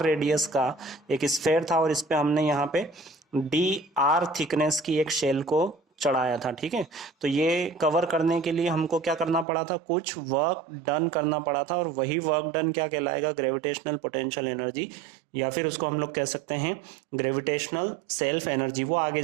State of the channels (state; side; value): drops out; left; at 9.5 s